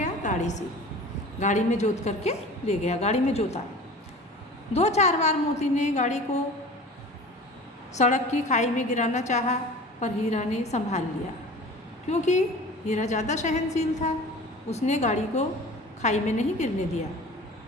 गाड़ी से। गाड़ी में जोत करके ले गया। गाड़ी में जोता। 2-4 बार मोती ने गाड़ी को सड़क की खाई में गिराना चाहा, पर हीरा ने संभाल लिया, क्योंकि हीरा ज़्यादा सहनशील था। उसने गाड़ी को खाई में नहीं गिरने दिया।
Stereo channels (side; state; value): both; normal; correlation 0.40